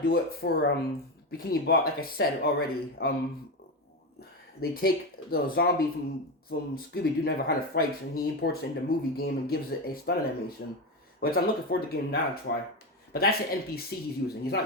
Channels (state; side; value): normal; both; correlation 0.16